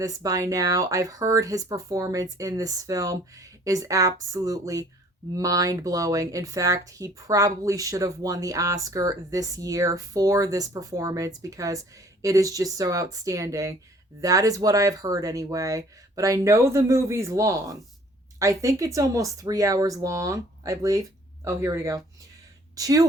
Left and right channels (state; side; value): normal; both; correlation 0.55